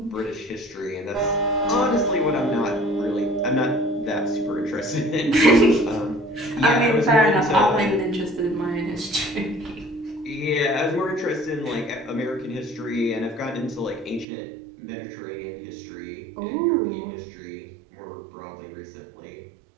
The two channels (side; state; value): left; drops out; at 14.2 s